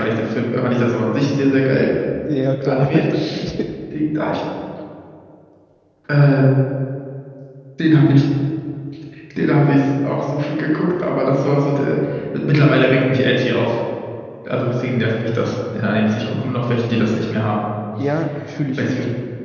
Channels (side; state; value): both; identical; correlation 1.00